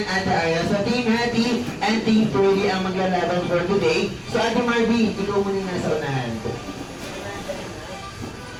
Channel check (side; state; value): both; identical; correlation 1.00